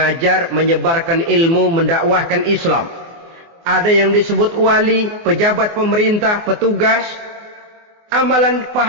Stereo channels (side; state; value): left; late; 24 ms